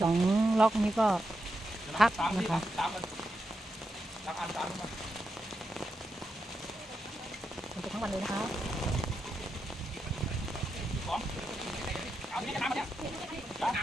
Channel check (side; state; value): both; normal; correlation 0.86